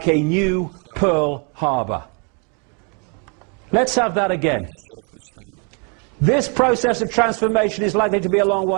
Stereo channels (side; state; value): left; quieter; 36.7 dB